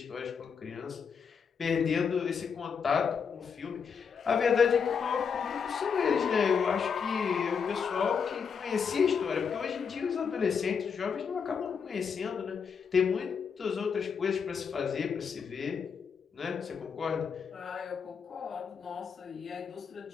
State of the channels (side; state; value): right; quieter; 6.4 dB